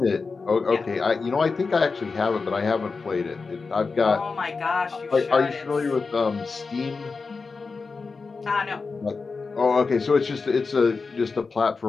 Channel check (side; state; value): right; quieter; 4.5 dB